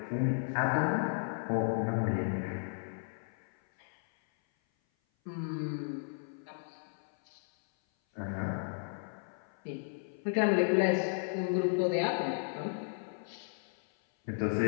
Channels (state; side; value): silent; right; 55 dB below the other